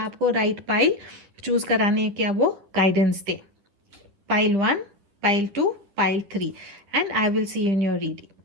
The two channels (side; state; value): left; late; 9.9 ms